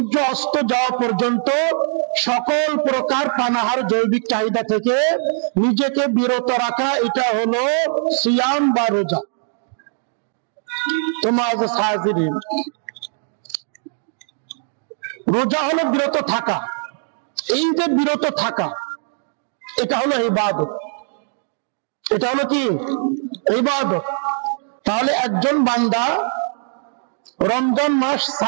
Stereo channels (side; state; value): left; silent; digital silence